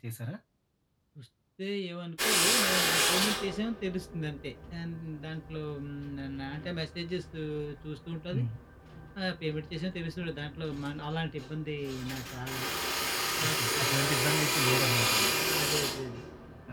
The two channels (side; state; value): both; identical; correlation 1.00